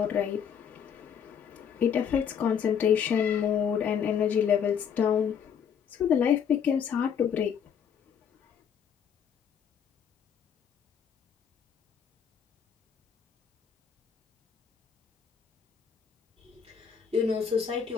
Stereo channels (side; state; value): right; quieter; 7.7 dB